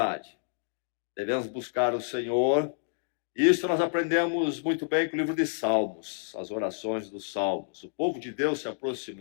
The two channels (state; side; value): silent; right; digital silence